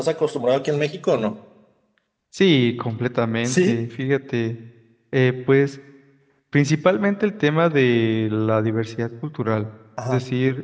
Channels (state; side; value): identical; both; correlation 1.00